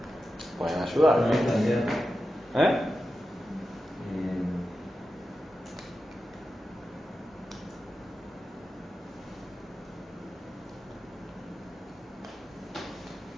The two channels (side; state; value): both; normal; correlation 0.91